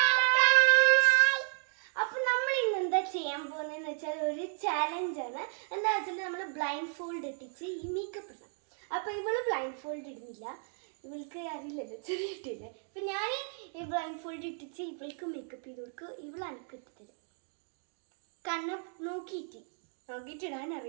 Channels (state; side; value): silent; left; 56 dB below the other